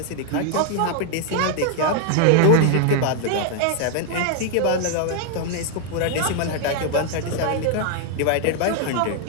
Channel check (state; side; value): different; both; correlation 0.00